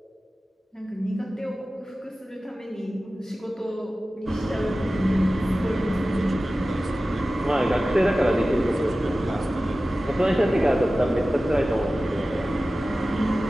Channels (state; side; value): normal; both; correlation 0.96